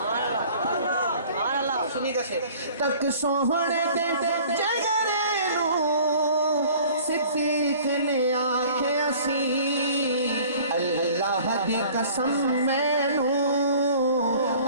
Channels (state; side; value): inverted; both; correlation -0.49